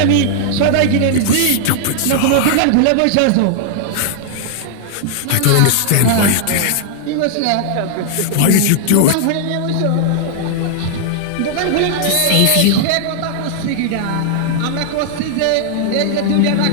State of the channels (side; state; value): both; different; correlation -0.01